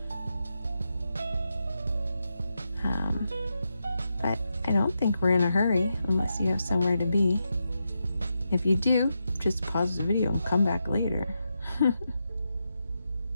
But I don't think we're in a hurry unless you have somewhere to be. If you do, just pause the video and come back later.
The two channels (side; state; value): both; inverted; correlation -0.86